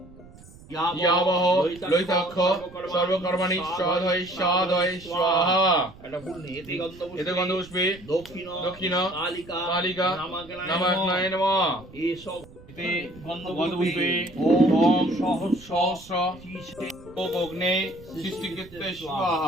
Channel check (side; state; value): right; noise; rumble, 21 dB below the sound